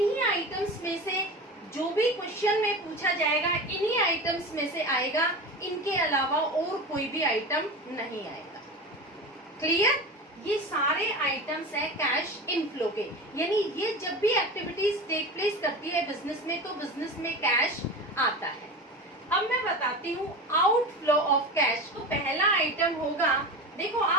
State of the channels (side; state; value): both; normal; correlation 0.28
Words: आइटम्स में से जो भी क्वेश्चन में पूछा जाएगा इन्हीं आइटम्स में से आएगा, इनके अलावा और कोई भी आइटम नहीं आएगा। क्लियर? ये सारे आइटम्स है कैश इनफ्लो के, यानी ये जब भी एक्टिविटीज टेक प्लेस करती है बिजनेस में तो बिजनेस में कैश आता है। अब मैं बताती हूँ आउटफ्लो ऑफ कैश। तो पहला आइटम होगा, देखो